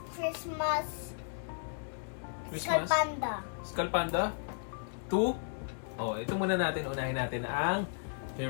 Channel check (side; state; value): right; silent; digital silence